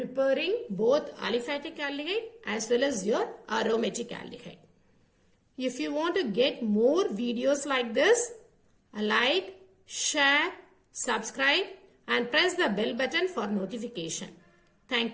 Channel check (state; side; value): identical; both; correlation 1.00